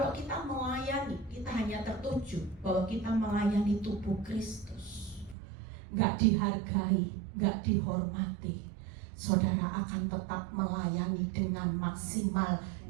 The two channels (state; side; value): drops out; left; at 5.4 s